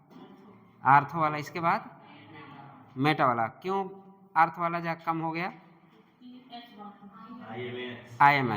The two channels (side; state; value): both; identical; correlation 1.00